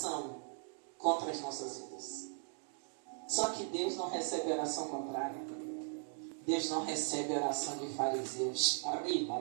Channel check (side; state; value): left; silent; 52 dB below the other